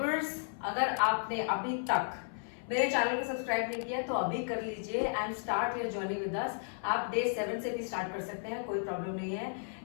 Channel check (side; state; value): right; silent; 55 dB below the other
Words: अगर आपने अभी तक मेरे चैनल को सब्सक्राइब नहीं किया तो अभी कर लीजिए and start your journey with us. आप डे 7 से भी स्टार्ट कर सकते हैं, कोई प्रॉब्लम नहीं है।